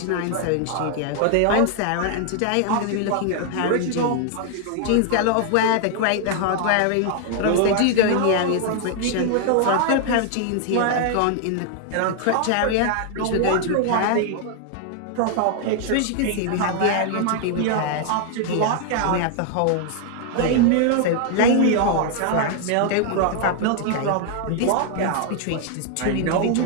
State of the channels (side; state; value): both; different; correlation 0.00